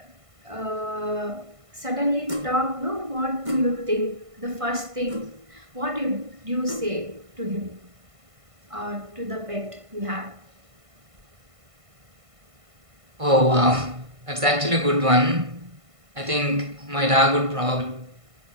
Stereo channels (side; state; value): left; late; 1.5 ms